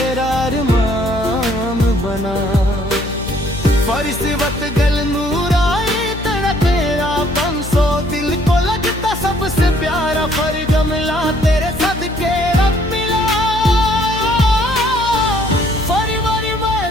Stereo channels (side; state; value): left; noise; hum, 10 dB below the sound